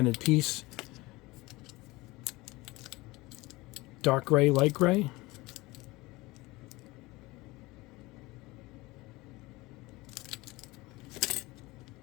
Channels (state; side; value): quieter; right; 21.4 dB